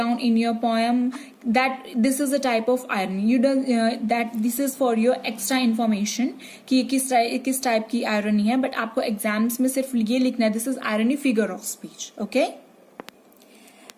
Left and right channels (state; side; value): identical; both; correlation 1.00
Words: in your poem that this is a type of irony. You that this is for your extra information कि ये किस टाइप की आयरनी है. बट आपको एग्जाम्स में सिर्फ ये लिखना है, this is irony figure of speech. Okay,